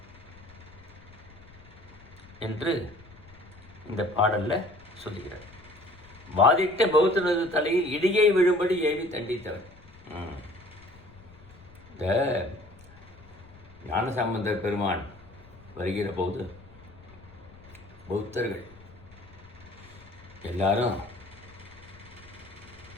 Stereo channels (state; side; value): noise; left; rumble, 22 dB below the sound